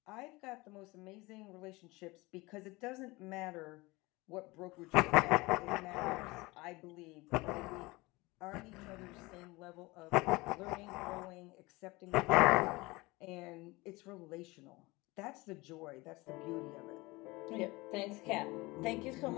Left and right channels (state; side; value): quieter; right; 22.6 dB